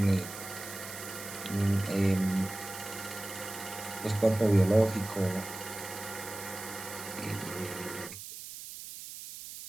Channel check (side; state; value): right; noise; hiss, 11 dB below the sound